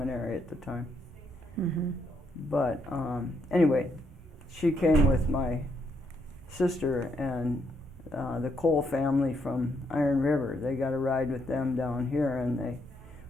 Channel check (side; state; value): both; normal; correlation 0.75